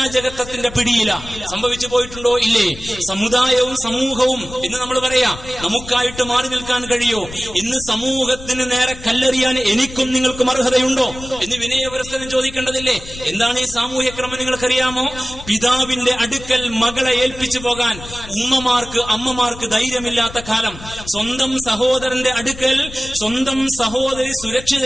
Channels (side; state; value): left; noise; rumble, 15 dB below the sound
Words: പിടിയില. സംഭവിച്ചു പോയിട്ടുണ്ടോ? ഇല്ലേ? സമുദായവും സമൂഹവും ഇന്ന് നമ്മൾ പറയാം നമുക്കായിട്ട് മാറി നിൽക്കാൻ കഴിയോ? ഇന്ന് സമൂഹത്തിന് നേരെ കല്ലെറിയാൻ എനിക്കും നിങ്ങൾക്കും അർഹതയുണ്ടോ എന്ന് വിനയപുരസ്സരം ചോദിക്കേണ്ടതില്ലേ? എന്താണ് ഈ സാമൂഹ്യ ക്രമം നിങ്ങൾക്കറിയാമോ? പിതാവിന്റെ അടുക്കൽ മകളെ ഏൽപ്പിച്ചു പോകാൻ അമ്മമാർക്ക് ധൈര്യമില്ലാത്ത കാലം. സ്വന്തം സഹോദരന്റെ അടുക്കൽ സ്വന്തം സഹോദരി